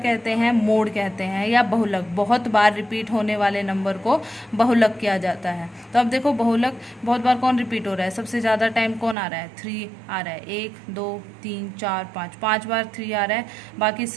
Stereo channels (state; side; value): drops out; left; at 9.2 s